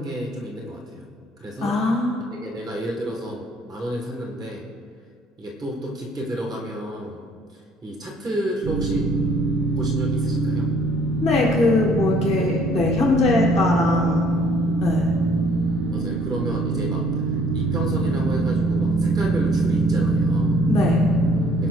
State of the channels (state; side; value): normal; both; correlation 0.60